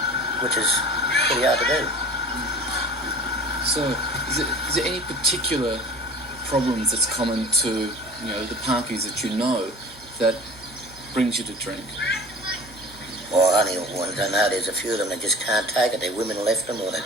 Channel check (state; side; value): normal; both; correlation 0.41